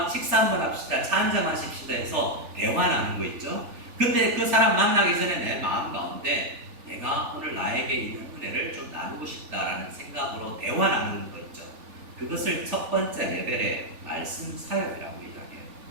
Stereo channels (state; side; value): late; left; 3.4 ms